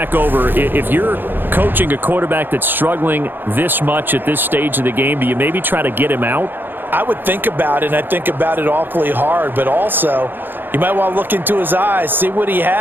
over. If you're coaching a quarterback that's struggling this much at this stage of the game, do you maybe try to get him out? I would think about it, and I think about it awfully hard, but also you might want to look into his eyes, see what he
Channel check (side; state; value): left; late; 0.096 ms